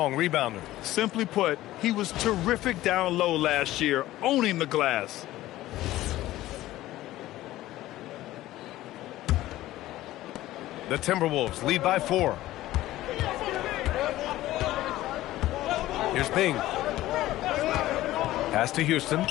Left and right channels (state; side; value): quieter; right; 15.6 dB